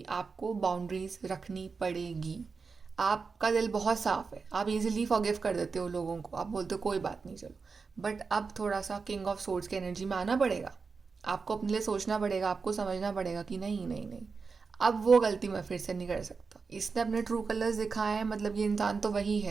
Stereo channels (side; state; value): left; quieter; 4.8 dB